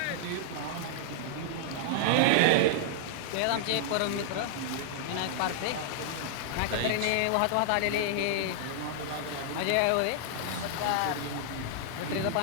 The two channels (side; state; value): both; different; correlation -0.01